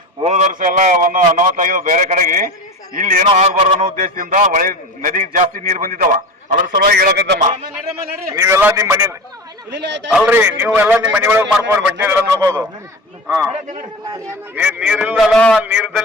ಹೋದ ವರ್ಷ ಎಲ್ಲ ಒಂದು ಅನಾಹುತ ಬೇರೆ ಕಡೆಗೆ. ಇಲ್ಲಿ ಏನೋ ಆಗ್ಬಾರ್ದು ಅನ್ನೋ ಉದ್ದೇಶದಿಂದ ಒಳ್ಳೆ ನದಿಗೆ ಜಾಸ್ತಿ ನೀರು ಬಂದಿದ್ದಾವ. ಅದ್ರ ಸಲುವಾಗಿ ಹೇಳಕತ್ತಮ್ಮ. ನೀವೆಲ್ಲ ನಿಮ್ಮ ಮನೆ ಅಲ್ರಿ, ನೀವೆಲ್ಲ ನಿಮ್ಮ ಮನೆ ಒಳಗೆ ಮಾಡ್ಕೊರಿ, ಬಟ್ಟೆ ಎಲ್ಲ ನೋಡ್ಬೋದು. ನೀರಿಲ್ಲಲ್ಲ,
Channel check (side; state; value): both; normal; correlation 0.29